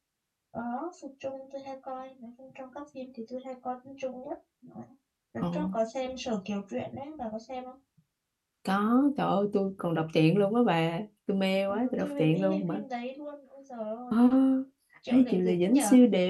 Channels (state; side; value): identical; both; correlation 1.00